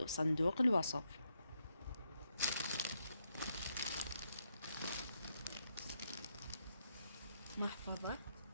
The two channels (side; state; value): both; inverted; correlation -0.79